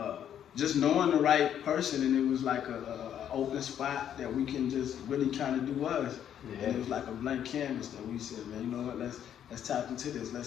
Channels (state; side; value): quieter; right; 9.7 dB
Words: just knowing the right person, and it was like a open spot that we can just really kind of do us. Yeah. And it was like a blank canvas that we said, man, you know what? Let's tap into this.